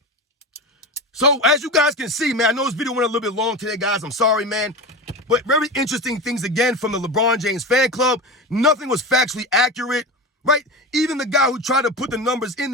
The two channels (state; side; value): normal; both; correlation 0.25